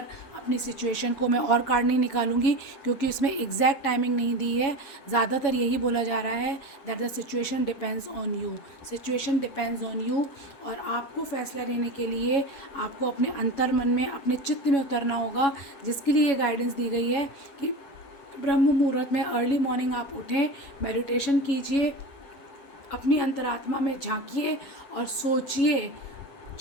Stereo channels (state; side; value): late; right; 7.2 ms